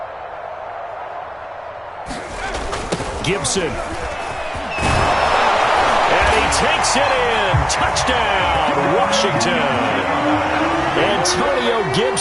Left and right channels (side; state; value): both; identical; correlation 1.00